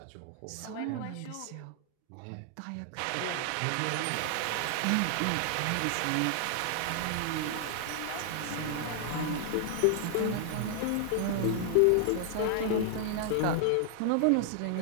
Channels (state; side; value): different; both; correlation 0.00